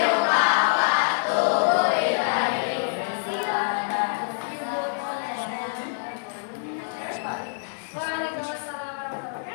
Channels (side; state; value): right; silent; 58 dB below the other